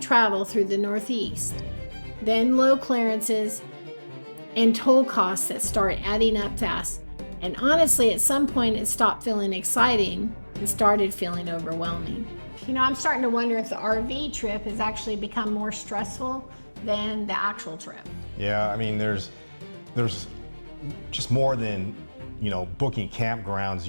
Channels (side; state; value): both; inverted; correlation -1.00